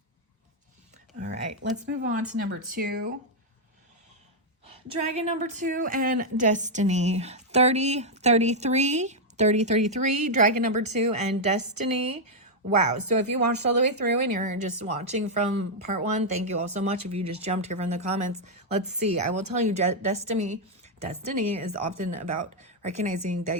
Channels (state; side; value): normal; both; correlation -0.02